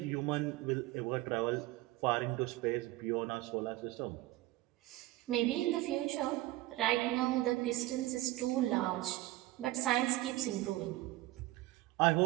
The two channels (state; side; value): quieter; left; 17.8 dB